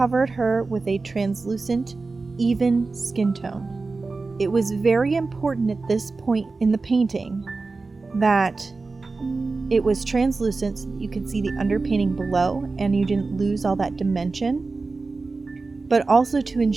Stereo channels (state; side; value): quieter; left; 3.9 dB